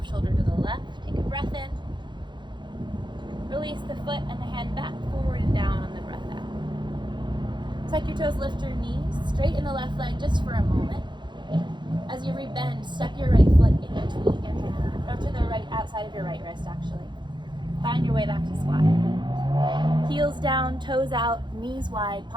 shoulder to the left. Take a breath in. Release the foot and the hand back, forward and down on the breath out. Tuck your toes, lift your knees, straighten the left leg just for a moment. As you rebend, step your right foot in between your hands, or to the right, outside of your right wrist actually. Find your way back to squat. Heels down, toes out, knees wide,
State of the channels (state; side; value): late; left; 0.22 ms